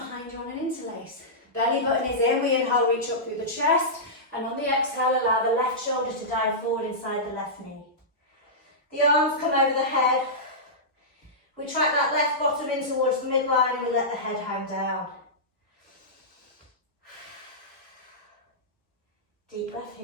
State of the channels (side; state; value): both; normal; correlation -0.14